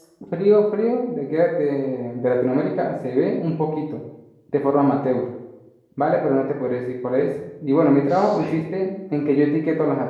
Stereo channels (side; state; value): both; identical; correlation 1.00